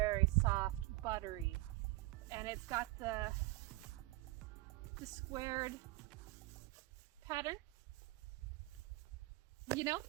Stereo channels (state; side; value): quieter; left; 20.3 dB